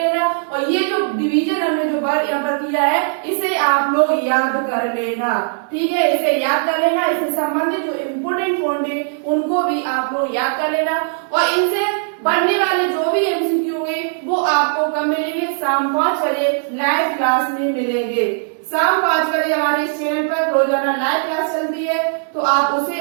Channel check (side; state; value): left; silent; digital silence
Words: और ये जो डिवीजन हमने जो वर्ड यहाँ पर किया है इसे आप लोग याद कर लेना, ठीक है। इसे याद कर लेना, इससे संबंधित जो इम्पोर्टेंट पॉइंट है उनको भी आप लोग याद कर लेना। और इनसे बनने वाले जो भी एमसीक्यू होंगे वो आपको कब मिलेंगे? शाम 5 बजे लाइव क्लास में मिलेंगे। शाम 5 बजे हमारे इस चैनल पर रोजाना लाइव क्लास चलती है, तो आप उसे